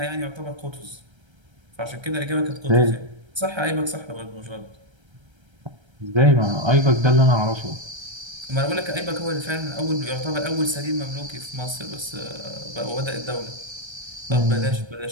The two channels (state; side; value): late; left; 1.3 ms